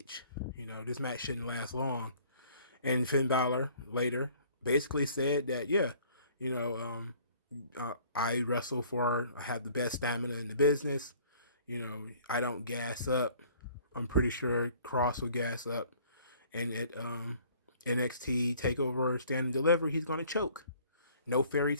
This match shouldn't last long. And Finn Balor later basically said that, yeah, I wrestle I have the best stamina in the business. I don't gas up. I'm pretty sure Cross will gas up. And at NXT TakeOver Stand and Deliver, he's going to choke. No fairy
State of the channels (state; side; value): inverted; both; correlation -0.55